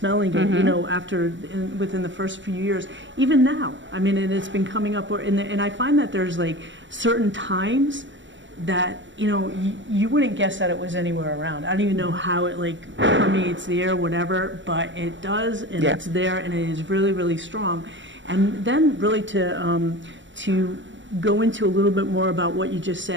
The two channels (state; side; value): late; left; 0.54 ms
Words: it, within the first few years. Even now, and it's been coming up, and I find that there's like certain times that you wouldn't guess that it was anywhere around. I don't even know how it permeates the air, whatever, but it does, and it's there, and it is really, really strong. And then really to go into a little bit more about what you just